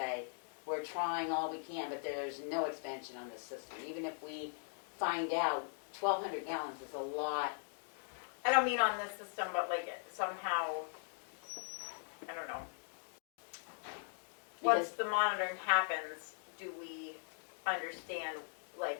we're trying all we can, but there's no expansion on this system. Even if we find out 1,200 gallons is a lot. I don't mean on this system, but like somehow, I don't know. Once Because the monitoring happens, do we understand,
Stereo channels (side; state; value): right; silent; digital silence